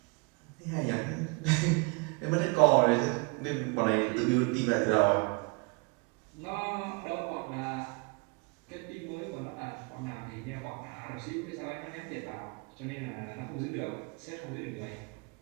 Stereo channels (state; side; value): quieter; left; 30.4 dB